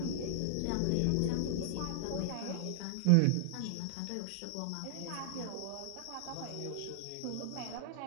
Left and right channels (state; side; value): different; both; correlation 0.00